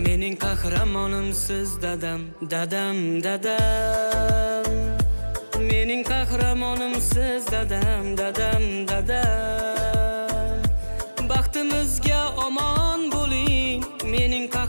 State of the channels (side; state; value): both; inverted; correlation -1.00